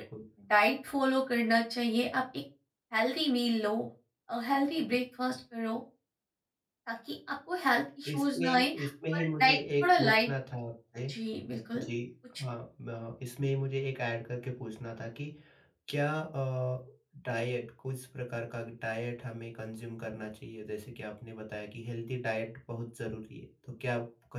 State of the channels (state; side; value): identical; both; correlation 1.00